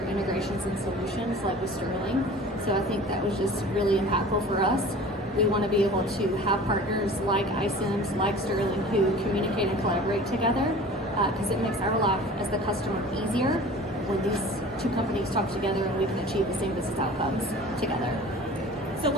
integrations and solutions like with Sterling. So I think that was just really impactful for us. We want to be able to have partners like iCIMS, like Sterling, who communicate and collaborate together because it makes our life as the customer easier when these two companies talk together and we can achieve the same business outcomes together. So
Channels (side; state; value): both; normal; correlation 0.42